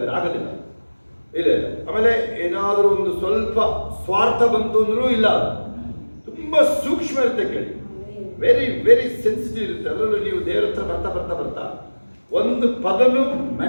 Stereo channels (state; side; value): inverted; both; correlation -1.00